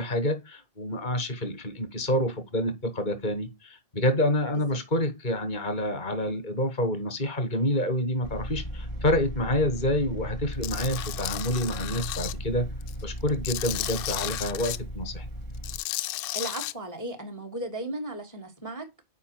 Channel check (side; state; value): right; late; 2.5 ms